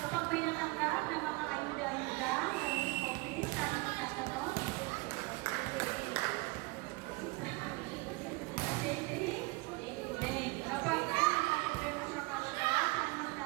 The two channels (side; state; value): left; quieter; 25.2 dB